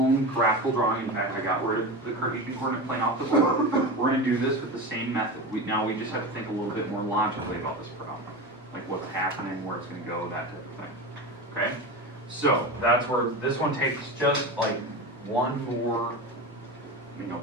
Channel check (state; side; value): normal; both; correlation 0.25